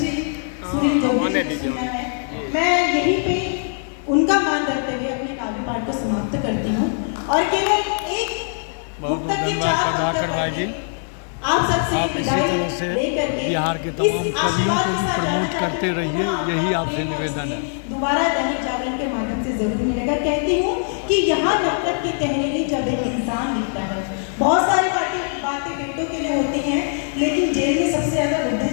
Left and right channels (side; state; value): right; silent; 62 dB below the other